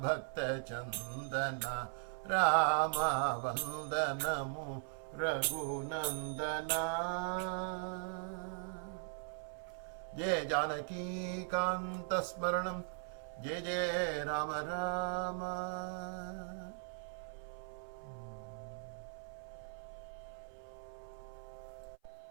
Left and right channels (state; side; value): silent; left; 51 dB below the other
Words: भक्तचन्दना राम वन्दनमु रघुनन्दना जय जानकी कांत स्मरणं जय जय राम राम